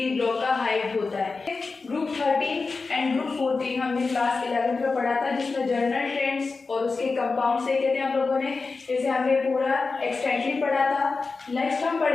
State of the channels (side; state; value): right; quieter; 4.2 dB